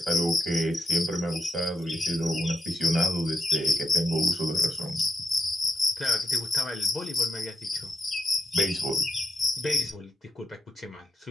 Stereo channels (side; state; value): both; normal; correlation 0.83